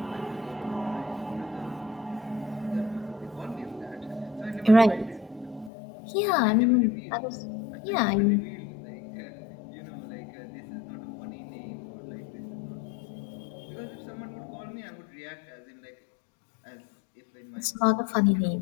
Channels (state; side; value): drops out; right; at 5.7 s